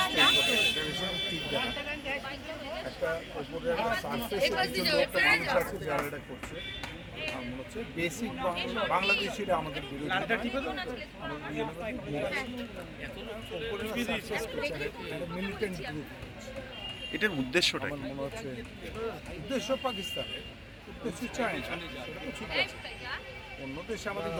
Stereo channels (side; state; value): both; identical; correlation 1.00